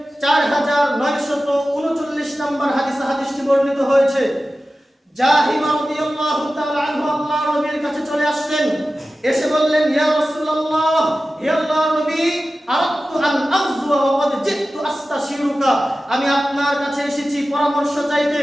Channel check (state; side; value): normal; both; correlation 0.95